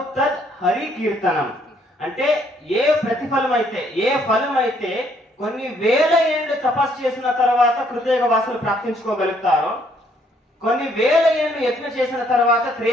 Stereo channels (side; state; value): both; normal; correlation 0.67